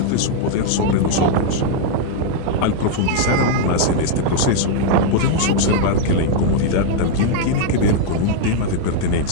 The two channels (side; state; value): both; different; correlation -0.01